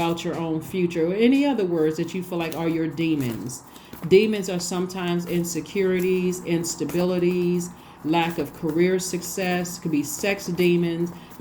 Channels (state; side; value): identical; both; correlation 1.00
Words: your own future, or any other words that you feel like are your demons. Demons are sometimes insecurities, instabilities, lack of career success, could be sex demons.